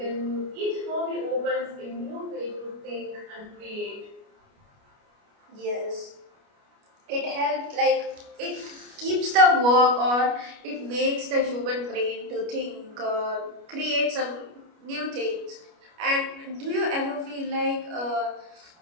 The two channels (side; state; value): left; late; 29 ms